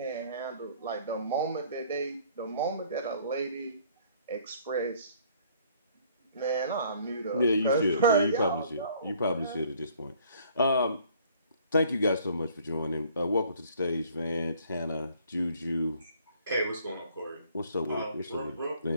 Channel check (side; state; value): both; inverted; correlation -0.58